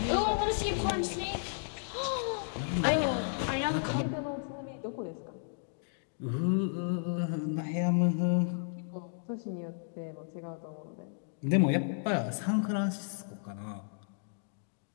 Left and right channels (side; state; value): right; silent; digital silence